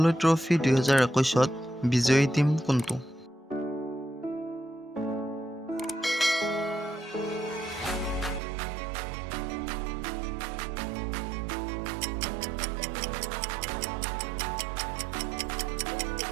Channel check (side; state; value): left; drops out; at 8.4 s